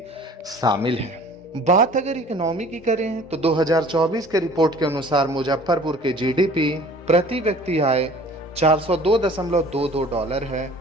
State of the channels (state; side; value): normal; both; correlation 0.48